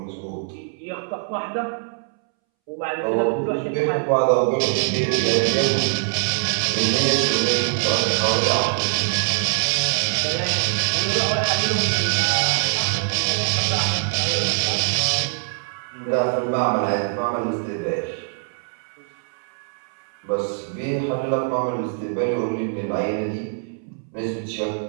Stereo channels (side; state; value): left; silent; 64 dB below the other